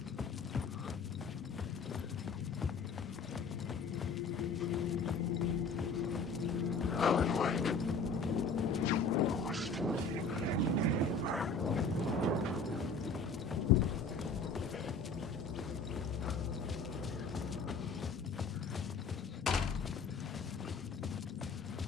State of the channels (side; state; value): right; quieter; 4.2 dB